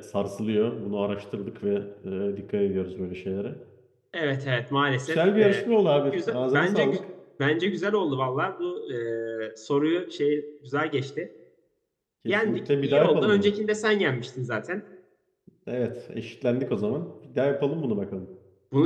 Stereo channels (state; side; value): identical; both; correlation 1.00